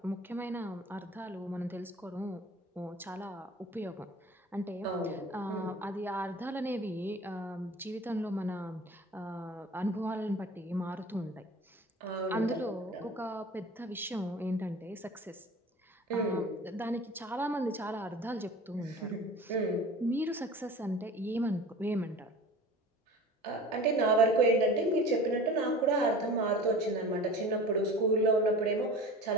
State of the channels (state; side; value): normal; both; correlation 0.39